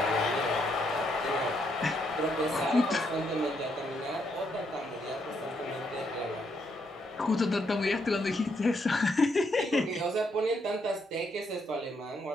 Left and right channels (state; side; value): normal; both; correlation 0.76